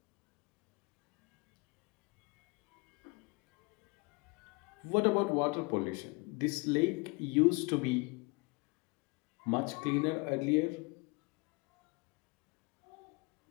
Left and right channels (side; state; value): right; quieter; 27.6 dB